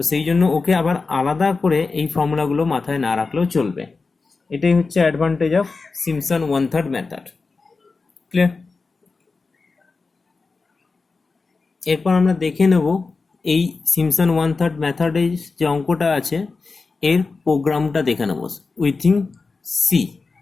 সেই জন্য ওকে আবার আলাদা করে এই ফর্মুলাগুলো মাথায় না রাখলেও চলবে। এটাই হচ্ছে advantage of Simpson 1/3 method, clear? এরপর আমরা দেখে নেব এই সিমসন 1/3 মেথডে যে অঙ্কটা আছে এর প্রোগ্রামটা দেখে নেব উইথিন সি।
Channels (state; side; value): quieter; right; 4.2 dB